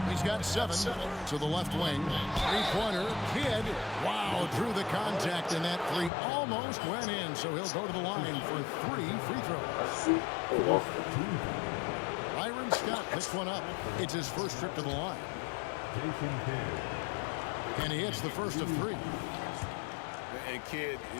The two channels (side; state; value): right; drops out; at 6.1 s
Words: He's got 7 to the left wing. Three-pointer, Kidd. Wow, drew the contact, and that 3 almost went in, so he'll go to the line for 3 free throws. Byron Scott picks one up. It's his first trip to the line. And he hits the first of 3. And Kidd,